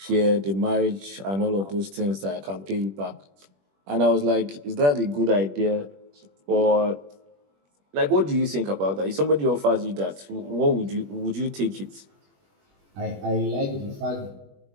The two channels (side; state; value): left; late; 21 ms